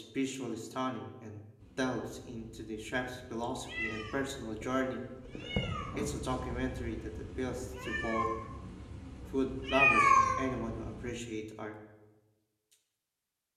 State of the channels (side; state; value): both; identical; correlation 1.00